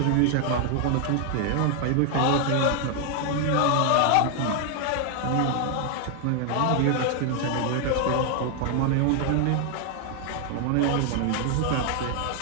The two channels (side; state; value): both; different; correlation 0.00